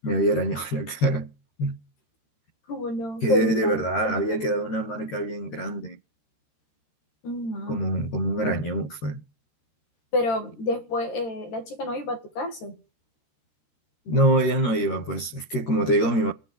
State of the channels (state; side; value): late; right; 13 ms